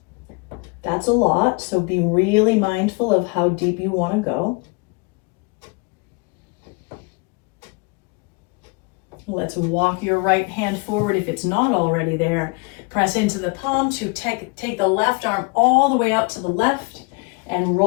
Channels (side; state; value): right; quieter; 30.4 dB